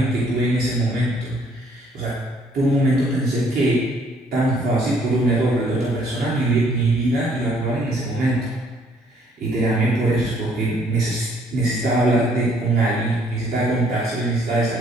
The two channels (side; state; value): both; normal; correlation 0.64